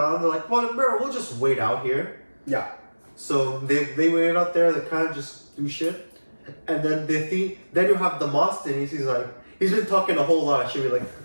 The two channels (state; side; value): inverted; both; correlation -1.00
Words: They're we'll just wait out here. Yeah. So they waited out there. They kind of just do shit, And then then you have Demosthenes. He's been talking a whole lot. She'd be like,